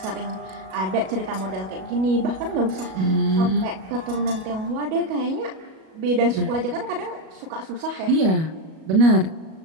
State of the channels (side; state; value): left; late; 37 ms